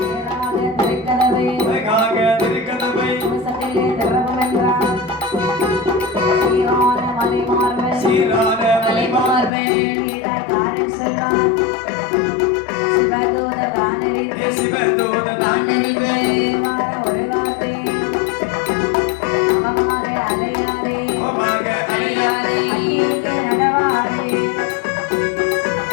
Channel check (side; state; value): right; drops out; at 9.5 s